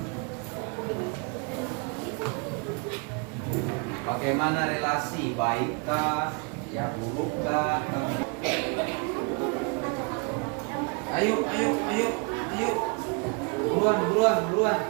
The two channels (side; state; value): left; quieter; 34.2 dB